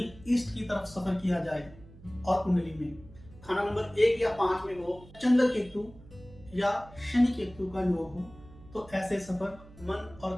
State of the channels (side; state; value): right; noise; hum, 21 dB below the sound